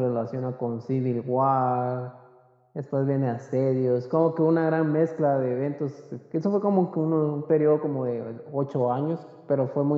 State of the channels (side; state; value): both; identical; correlation 1.00